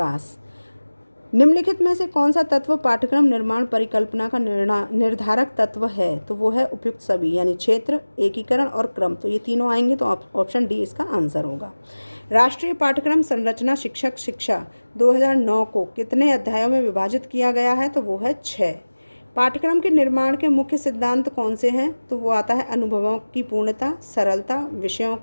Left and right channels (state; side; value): inverted; both; correlation -1.00